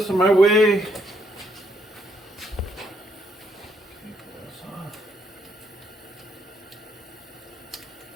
in my way.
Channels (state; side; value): normal; both; correlation 0.73